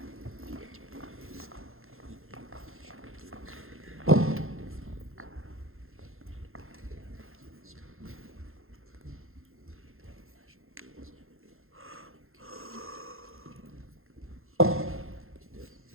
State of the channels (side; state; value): left; late; 0.61 ms